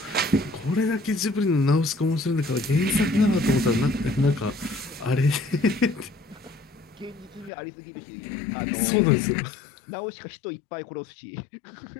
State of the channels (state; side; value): drops out; right; at 7.5 s